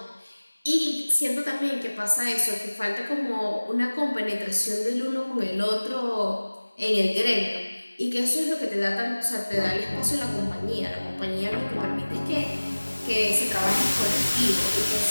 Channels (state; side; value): inverted; both; correlation -1.00